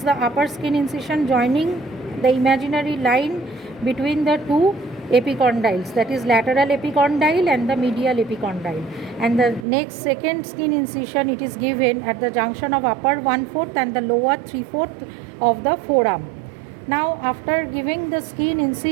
the upper skin incision joining the imaginary line between the two epicondyles, that is lateral epicondyle and the medial epicondyle. And the next second skin incision, it is given at the junction of upper 1/4 and the lower 3/4 of the forearm. Now after giving the skin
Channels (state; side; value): drops out; left; at 9.7 s